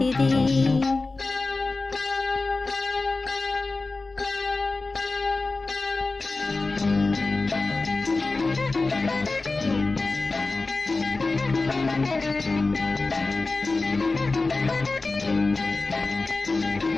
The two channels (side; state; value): right; quieter; 3.5 dB